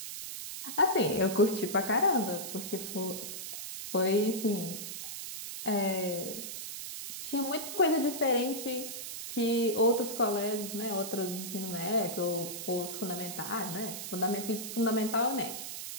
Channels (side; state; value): right; noise; hiss, 7 dB below the sound